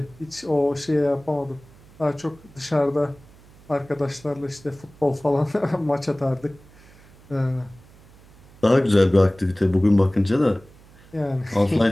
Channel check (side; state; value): right; noise; hum, 25 dB below the sound